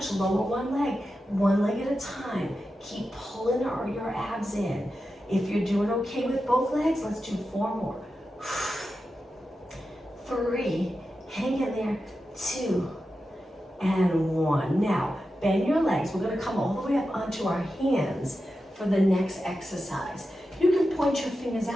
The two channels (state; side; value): normal; both; correlation 0.91